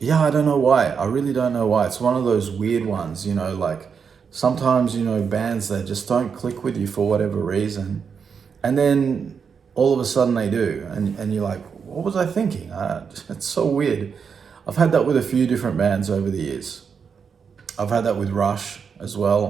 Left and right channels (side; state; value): left; quieter; 6.3 dB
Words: I don't know why. I really don't know why. It's one of those weird ones, you know, like sometimes, you know, bands that just don't click with you for whatever reason. And then all of a sudden they do. And you're like, what was I thinking? It's so weird. I've had that with a few different bands over the years. I've had that with Rush as